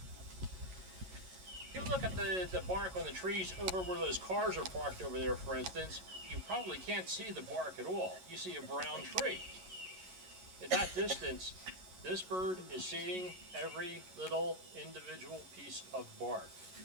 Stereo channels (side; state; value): left; late; 11 ms